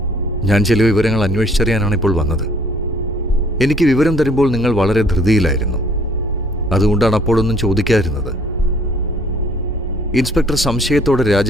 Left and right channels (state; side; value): normal; both; correlation 0.59